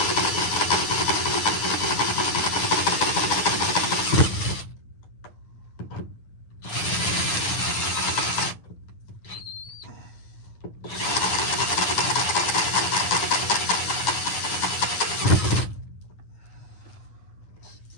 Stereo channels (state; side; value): late; right; 9.3 ms